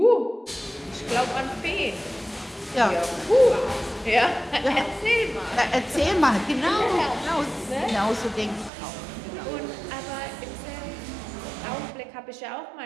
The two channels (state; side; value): drops out; left; at 8.7 s